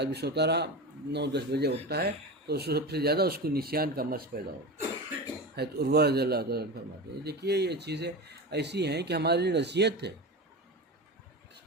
بھی سوتا رہا، 9-10 بجے اٹھتا ہے، تو سب سے زیادہ اس کو نسیان کا مرض پیدا ہوگا. حضرت عروہ رضی اللہ تعالیٰ فرماتے ہیں. دیکھیے یہ چیزیں ایسی ہیں کہ ہمارے لیے نصیحت ہے.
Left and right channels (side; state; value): both; normal; correlation 0.25